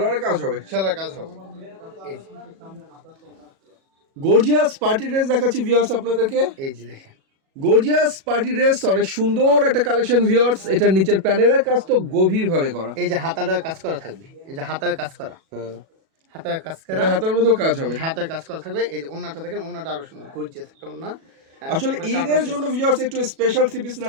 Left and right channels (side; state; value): left; late; 37 ms